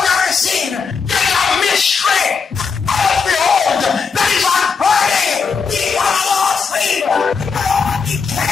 seen. It is a mystery. And behold, that is unheard. He has lost sleep. He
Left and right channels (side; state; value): right; quieter; 5.5 dB